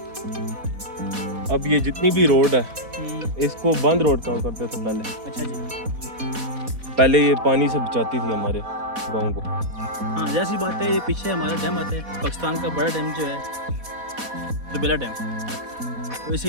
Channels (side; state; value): left; late; 4.1 ms